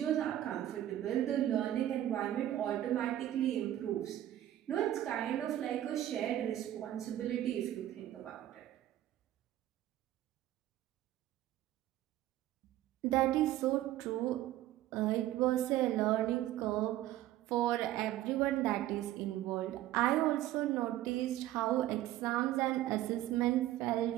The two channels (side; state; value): left; quieter; 13.5 dB